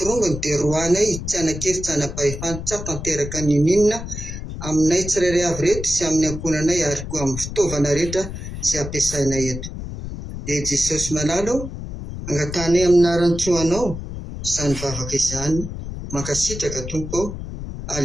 dia roanay tsy anan-kery tsy anam-pahefana tsy tanteraka ny ninona aminay tsirairay avy reto sy amin'ny ankonanay ary koa amin'ny fitaovana rehetra izay ampiasainay eto. Dia Jesosy malalo angatanay amin'ny aran-tsoanao izany vavaka izany, mankasitraka Tompo,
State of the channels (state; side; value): noise; left; rumble, 8 dB below the sound